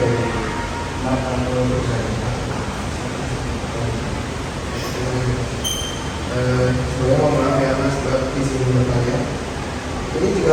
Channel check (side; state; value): both; identical; correlation 1.00